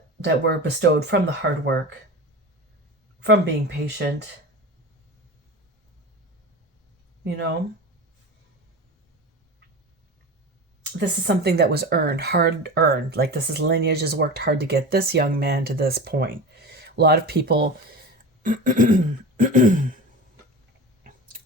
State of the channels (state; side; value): normal; both; correlation 0.30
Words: were bestowed from the hard work, from being patient, you know. This is something that was earned, hard earned. Like, this is lineage has worked hard to get this young man to this point. A lot of people